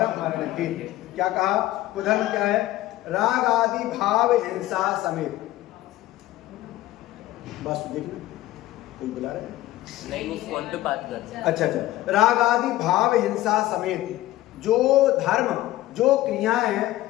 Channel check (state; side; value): quieter; right; 16.0 dB